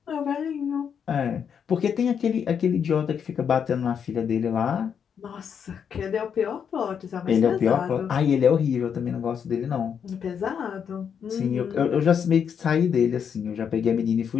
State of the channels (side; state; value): right; quieter; 7.5 dB